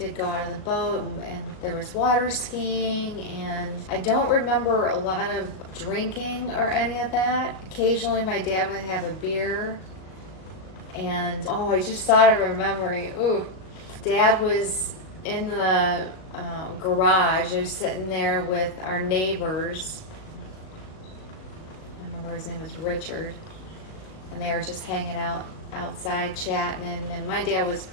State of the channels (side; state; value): right; late; 38 ms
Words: go out on the boat, and there was water skiing, and I don't remember a lot of drinking or any of that. Occasionally my dad would have a beer, and I just thought of a memory. Ooh, Dad was in the garage. He was sitting there with our neighbors. I remember his name was Richard, and they were just hanging out outside chatting, and my dad was